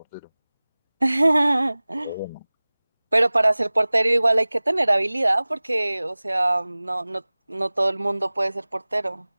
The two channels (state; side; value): inverted; both; correlation -0.99